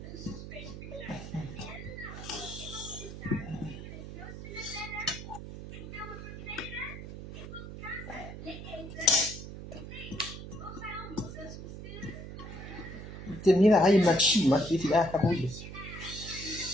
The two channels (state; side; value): noise; right; hum, 10 dB below the sound